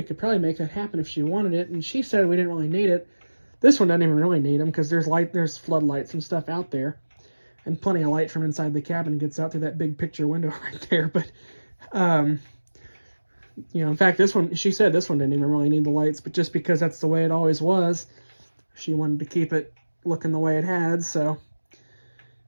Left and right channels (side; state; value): both; inverted; correlation -1.00